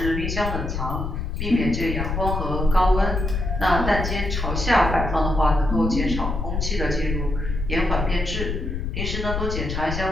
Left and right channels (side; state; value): left; noise; rumble, 3 dB below the sound